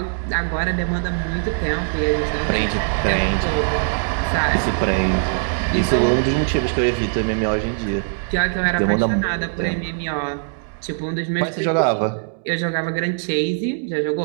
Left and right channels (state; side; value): silent; left; digital silence